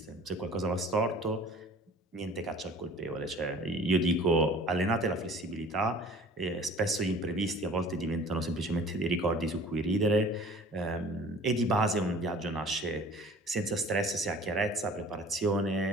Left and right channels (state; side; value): normal; both; correlation 0.47